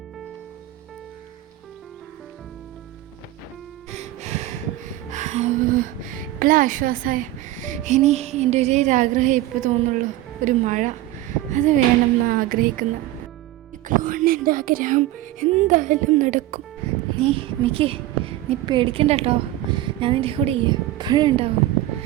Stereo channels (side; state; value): left; quieter; 15.3 dB